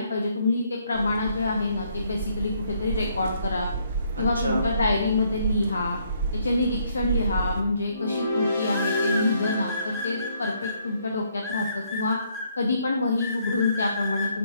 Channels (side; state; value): both; inverted; correlation -0.70